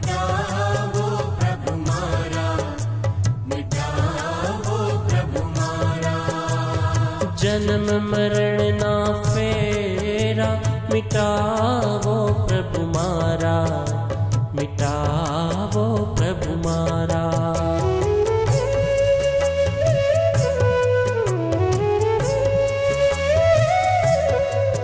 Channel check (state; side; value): identical; both; correlation 1.00